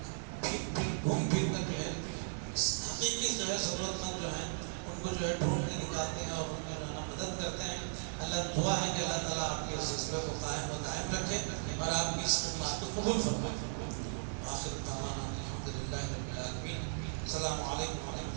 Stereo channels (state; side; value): silent; left; 53 dB below the other